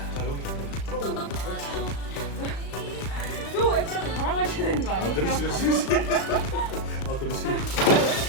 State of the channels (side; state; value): right; late; 36 ms